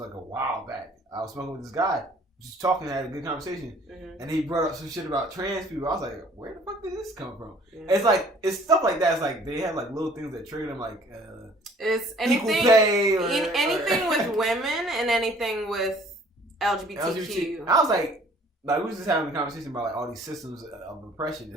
a while back. I was smoking with this guy, just talking, had a good conversation, and he brought up some shit about trans people. I was like, where the fuck did this come from? Yeah. It's like it's stuff like that. It's like they have like little things that trigger them, like. It's anything, anything with women and anything with LGBTQ. I was like we was just having a conversation about like all these systems of oppression,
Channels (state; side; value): normal; both; correlation 0.55